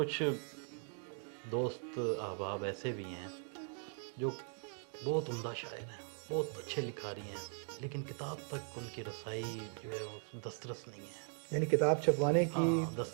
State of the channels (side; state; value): left; silent; 51 dB below the other